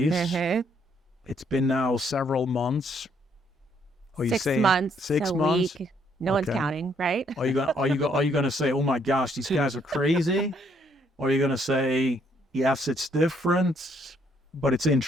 Mm-hmm. It's been now several months. Are you 6 saying months, 6 a months? week. No one's counting, right? Are you gonna say, "Oh my gosh, these guys are crazy," or are you gonna say, "Yes, it's different, but it's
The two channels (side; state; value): both; normal; correlation 0.69